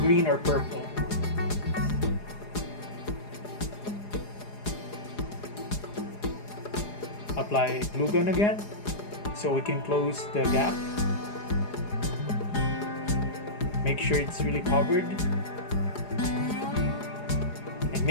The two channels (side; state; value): right; late; 4.8 ms